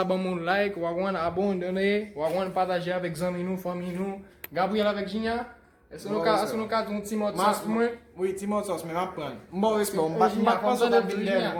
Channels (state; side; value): identical; both; correlation 1.00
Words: ban moun like, wagwan abandonne, wagwan partager avec zami nou, fami nou. Gabriel avec Jinya, est-ce nou ka ton ti mot sauce pou mwen? Oui, ti mot sauce, mais m'apprendre. M'bon respect, Jinya, m'bat pas ça konsan d'habitude Jinya.